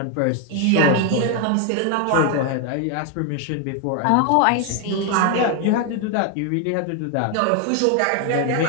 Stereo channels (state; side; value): different; both; correlation 0.01